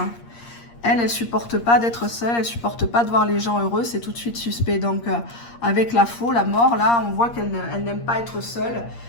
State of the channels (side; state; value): right; late; 8.6 ms